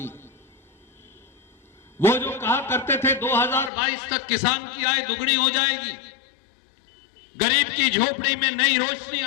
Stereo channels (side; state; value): right; drops out; at 3.7 s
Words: वो जो कहा करते थे 2022 तक किसान की आय दुगनी हो जाएगी, गरीब की झोपड़ी में नई रोशनी